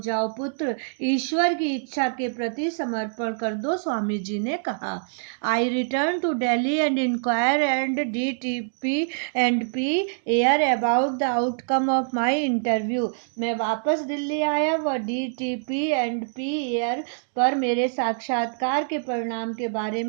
जाओ पुत्र, ईश्वर की इच्छा के प्रति समर्पण कर दो, स्वामी जी ने कहा. I return to Delhi and inquire and DTP and P air about the outcome of my interview. मैं वापस दिल्ली आया व DTP and P air पर मेरे साक्षात्कार के परिणाम के बारे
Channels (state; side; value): silent; left; digital silence